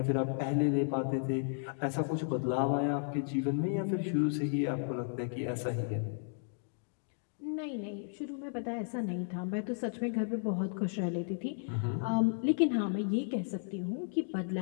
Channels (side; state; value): right; silent; digital silence